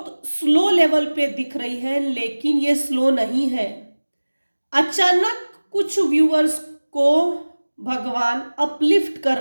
स्लो लेवल पे दिख रही है, लेकिन ये स्लो नहीं है। अचानक कुछ व्यूअर्स को भगवान अपलिफ्ट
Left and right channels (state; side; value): inverted; both; correlation -1.00